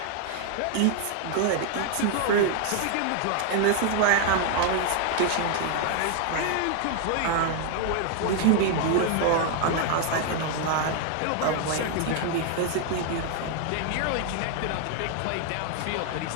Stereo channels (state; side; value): different; both; correlation 0.00